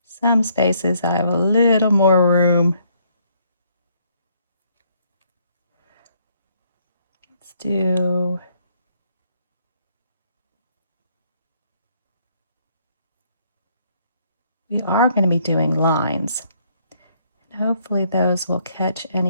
Some spaces I have a little more room. Let's do we are going to be doing lines. And hopefully those will catch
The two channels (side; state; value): both; inverted; correlation -0.69